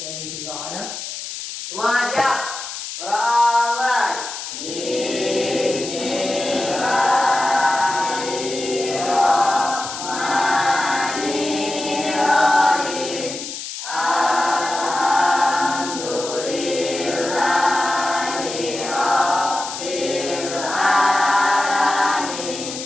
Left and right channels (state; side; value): noise; left; hiss, 8 dB below the sound